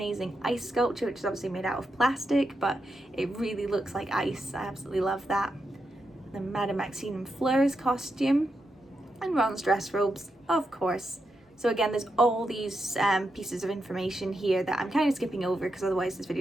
ice sculpture, which is obviously made out of plastic, but it really looks like ice. I absolutely love that. The Madame Maxime and Fleur's costume, and Ron's dress robes, of course. So again, there's all these pieces of information here that I'm kind of skipping over because otherwise this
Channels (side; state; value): both; normal; correlation 0.85